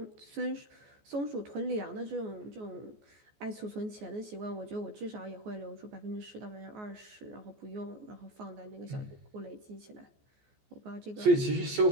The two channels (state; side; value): late; left; 14 ms